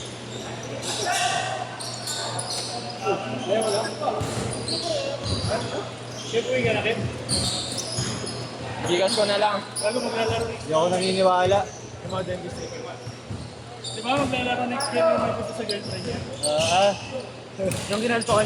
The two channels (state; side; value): identical; both; correlation 1.00